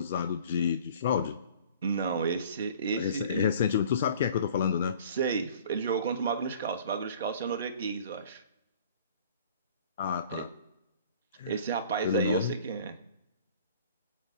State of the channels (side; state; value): both; inverted; correlation -0.48